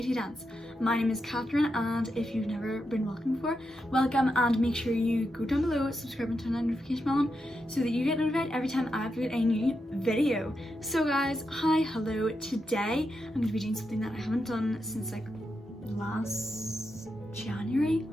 Dance. My name is Katherine, and if you've never been welcome before, welcome, and make sure you go down below, subscribe and turn on the notification bell on so that you get notified every time I upload a new video. So guys, hi, hello. Today I'm going to be doing something that I haven't done since like last January.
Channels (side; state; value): both; normal; correlation 0.86